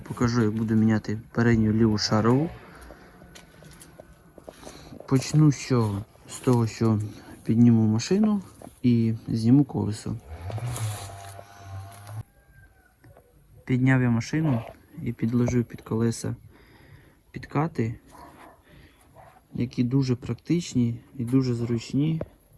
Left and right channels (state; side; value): identical; both; correlation 1.00